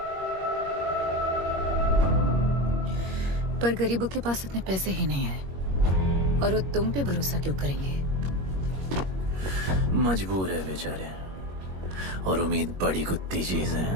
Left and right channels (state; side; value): late; left; 21 ms